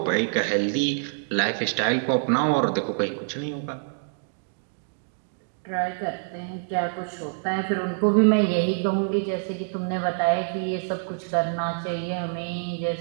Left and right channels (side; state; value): left; silent; digital silence